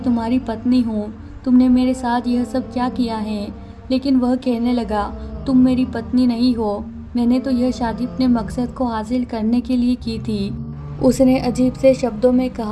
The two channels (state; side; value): identical; both; correlation 1.00